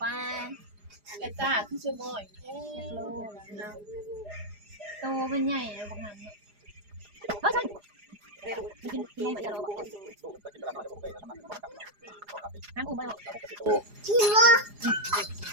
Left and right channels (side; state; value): left; late; 4.9 ms